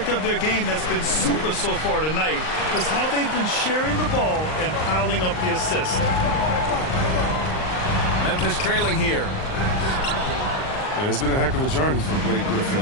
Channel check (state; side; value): late; right; 39 ms